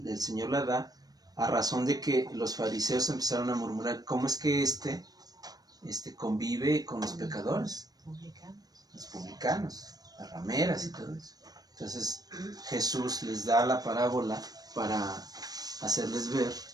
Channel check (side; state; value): left; late; 0.19 ms